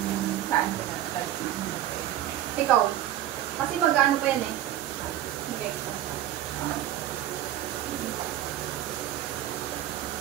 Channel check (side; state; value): left; quieter; 12.6 dB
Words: ko na? Ikaw. Kasi mag-ano pa yan eh. Okay.